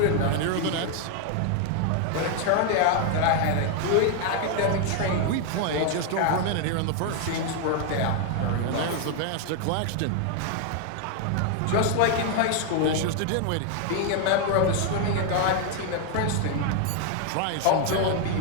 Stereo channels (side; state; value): both; different; correlation 0.00